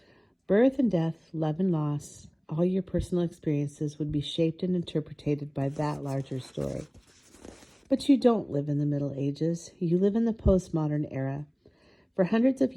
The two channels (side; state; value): both; identical; correlation 1.00